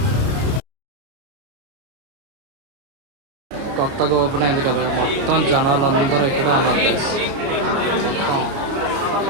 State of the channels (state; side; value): late; left; 29 ms